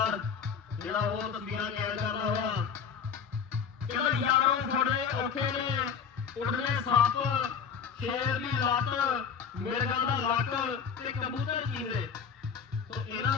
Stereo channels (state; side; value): quieter; right; 6.8 dB